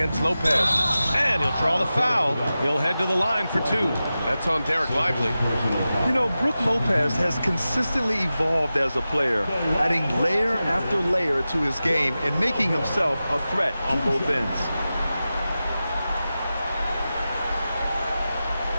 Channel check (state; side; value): inverted; both; correlation -0.94